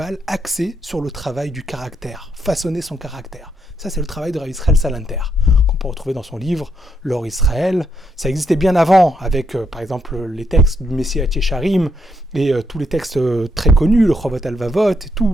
axés sur le travail du caractère, façonner son caractère. Ça, c'est le travail de Rav Israël Salanter, qu'on peut retrouver dans son livre « L'Or Israël ». Ça existait bien avant, avec, par exemple, les textes du Messie Yesharim et tous les textes très connus, le Chovot Alvavot, et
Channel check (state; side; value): normal; both; correlation 0.77